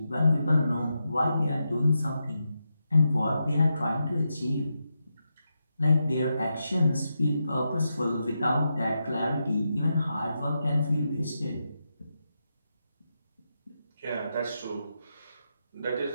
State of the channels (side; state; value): both; inverted; correlation -0.86